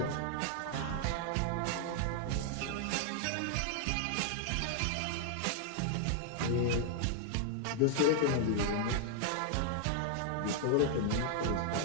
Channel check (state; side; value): different; both; correlation -0.01